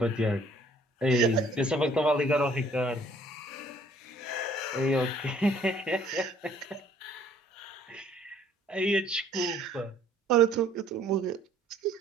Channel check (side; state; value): both; normal; correlation 0.59